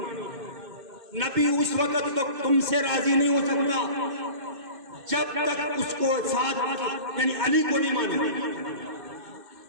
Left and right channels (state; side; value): late; left; 2.5 ms